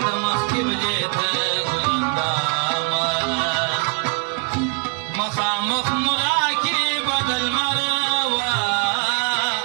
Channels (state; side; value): quieter; left; 36.8 dB